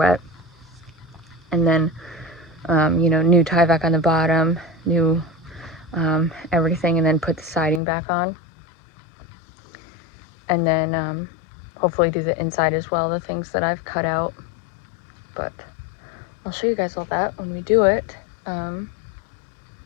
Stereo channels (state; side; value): drops out; right; at 7.8 s